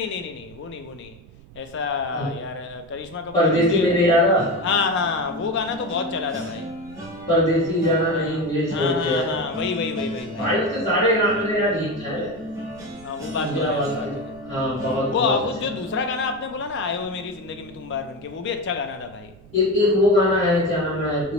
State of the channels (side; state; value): right; noise; rumble, 22 dB below the sound